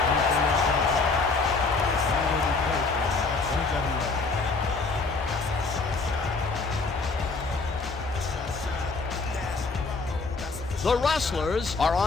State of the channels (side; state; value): right; quieter; 4.0 dB